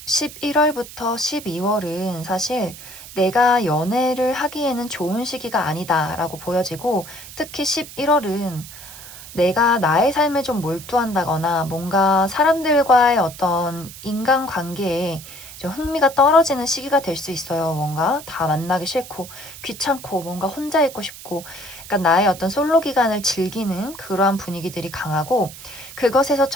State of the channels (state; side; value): noise; right; hiss, 15 dB below the sound